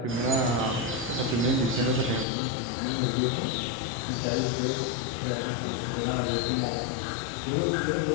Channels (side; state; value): right; drops out; at 2.2 s